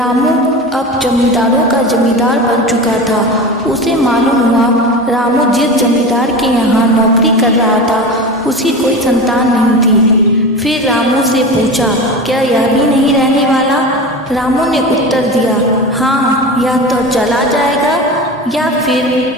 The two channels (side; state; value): both; normal; correlation 0.28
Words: अब जमींदारों का जमींदार बन चुका था। उसे मालूम हुआ रामू जिस जमींदार के यहाँ नौकरी कर रहा था उसकी कोई संतान नहीं थी। फिर रामू से पूछा, क्या यह भी नहीं रहने वाला? रामू ने उत्तर दिया, हाँ, यह तो चला जाएगा या फिर